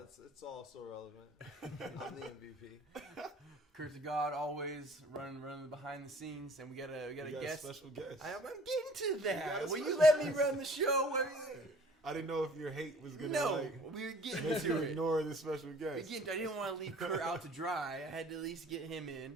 also relevant. I'm the MVP. Kurt to God, always running behind the scenes, and we got a guest. Special guest. I'm getting to that. Will you special let me guest. run the show? I didn't know if your hate was gonna No, we were getting make you to it. ignore this special guest. Again, I didn't want to leave Kurt out to dry. I had to at least get him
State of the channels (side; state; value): both; normal; correlation 0.52